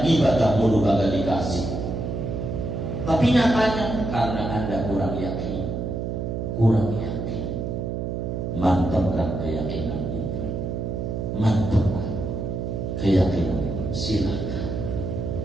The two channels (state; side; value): noise; right; hum, 3 dB below the sound